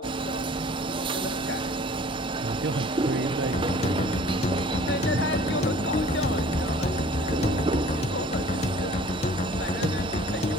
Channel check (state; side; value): normal; both; correlation 0.50